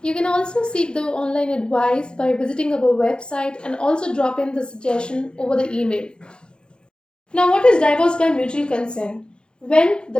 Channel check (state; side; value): late; right; 0.050 ms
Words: You can also seek the online advice by visiting our website and also drop in the suggestion over the email. Now, what is divorce by mutual consent? When the